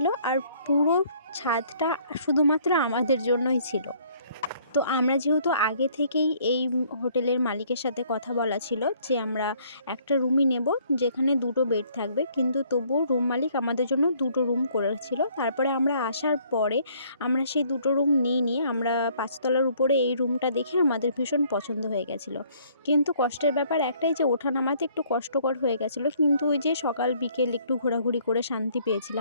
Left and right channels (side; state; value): both; inverted; correlation -0.62